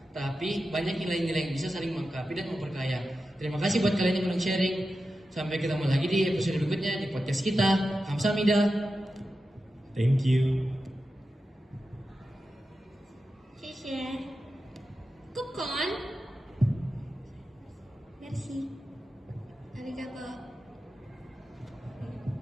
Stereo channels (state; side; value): normal; both; correlation 0.91